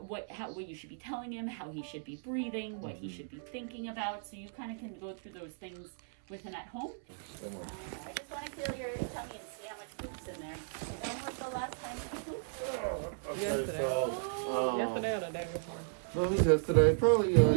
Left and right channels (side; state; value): left; silent; 54 dB below the other